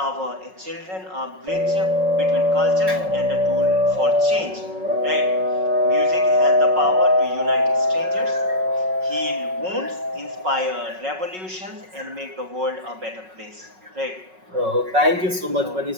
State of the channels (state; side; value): late; left; 5.4 ms